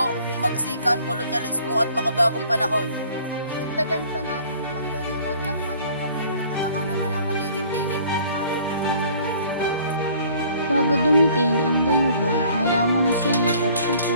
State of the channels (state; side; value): inverted; both; correlation -0.55